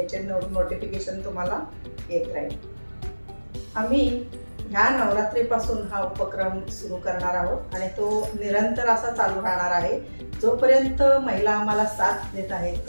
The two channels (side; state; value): both; inverted; correlation -1.00